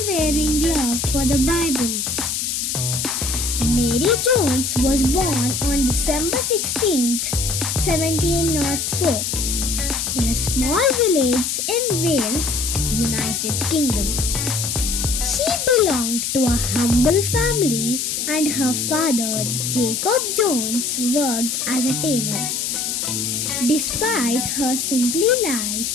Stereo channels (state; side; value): noise; left; hiss, 1 dB below the sound